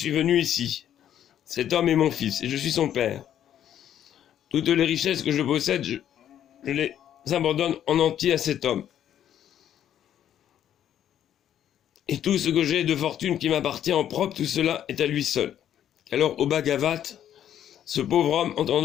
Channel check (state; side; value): quieter; right; 10.5 dB